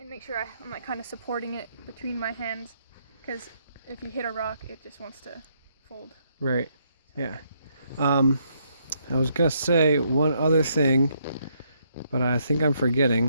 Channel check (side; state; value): both; inverted; correlation -0.74